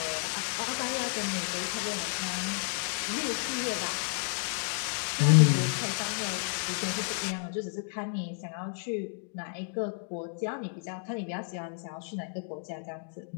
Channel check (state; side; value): silent; right; digital silence